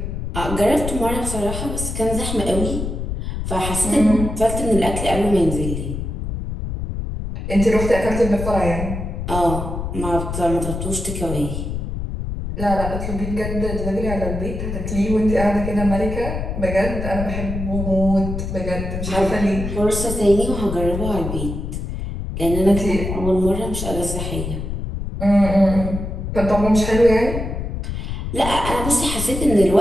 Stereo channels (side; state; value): left; noise; rumble, 5 dB below the sound